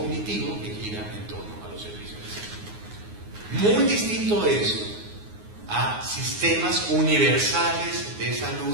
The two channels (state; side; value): late; left; 9.5 ms